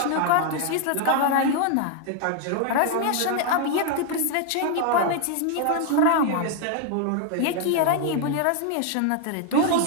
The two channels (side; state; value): both; different; correlation 0.00